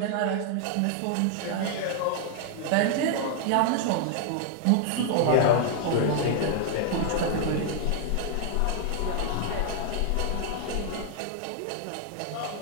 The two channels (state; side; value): different; both; correlation 0.00